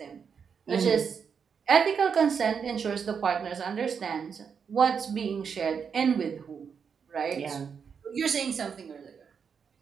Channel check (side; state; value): left; quieter; 6.5 dB